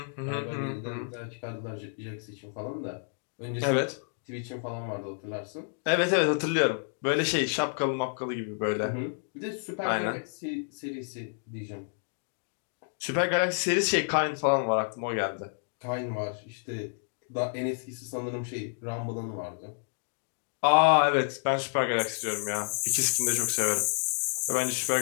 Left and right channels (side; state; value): right; silent; digital silence